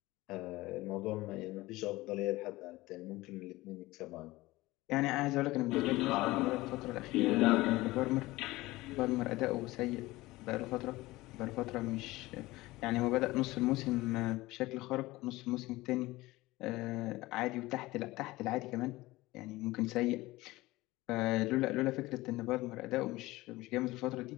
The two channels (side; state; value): right; quieter; 19.4 dB